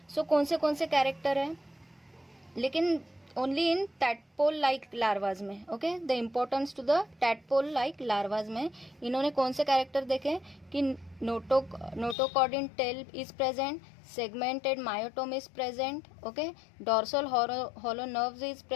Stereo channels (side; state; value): right; drops out; at 12.2 s